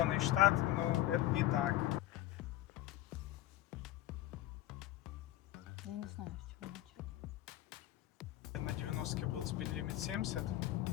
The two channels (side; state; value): right; quieter; 14.7 dB